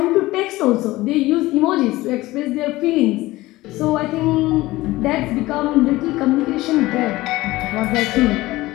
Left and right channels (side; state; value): right; quieter; 18.5 dB